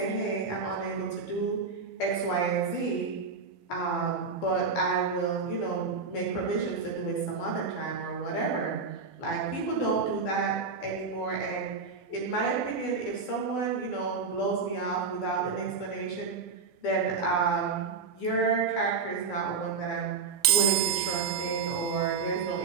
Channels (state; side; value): quieter; left; 5.0 dB